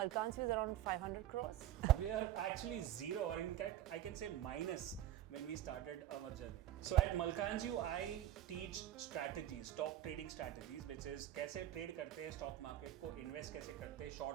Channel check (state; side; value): quieter; left; 12.5 dB